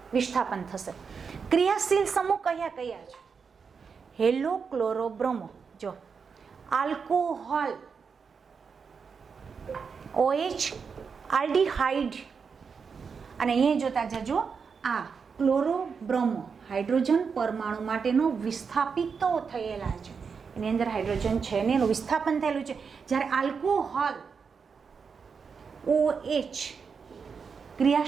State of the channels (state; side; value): quieter; left; 5.8 dB